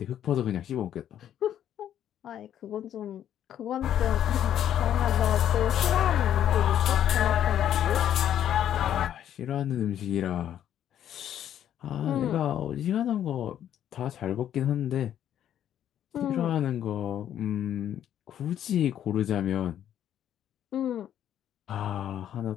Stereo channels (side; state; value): right; quieter; 10.5 dB